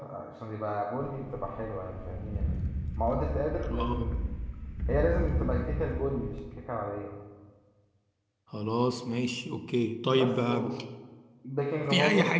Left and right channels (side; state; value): both; identical; correlation 1.00